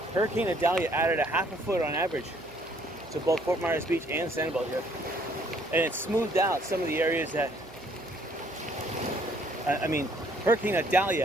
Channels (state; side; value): noise; right; hum, 21 dB below the sound